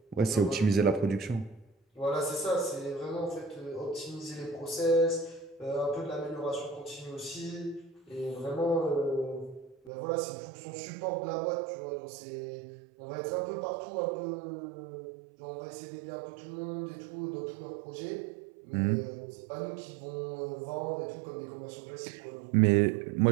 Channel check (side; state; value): left; drops out; at 9.9 s